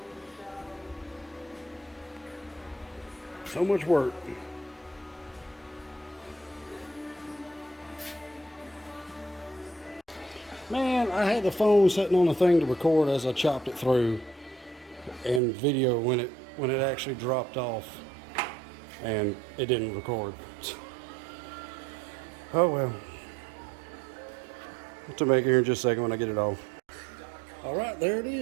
So much work. Man, I had the phone sitting on the thing to record as I chopped it through, and video when it actually dropped off, and it didn't record. Oh well. I'll have to make it here in just a second when I get it off. All right, there it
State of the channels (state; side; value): drops out; left; at 15.4 s